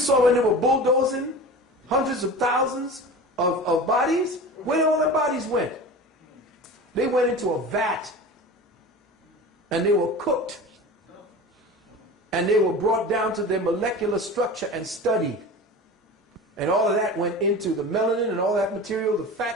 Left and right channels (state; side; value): normal; both; correlation 0.34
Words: when they were bulldozing hundreds of thousands of bodies? Where all their bodies went? They went into a vat and they were cooked. And they were brought down to their molecular structure and studied. And all of that went into the melanin and all that material, the fat